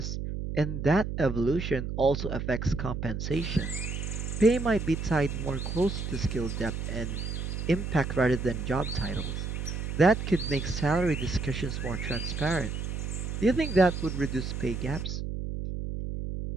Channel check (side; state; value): right; noise; hum, 4 dB below the sound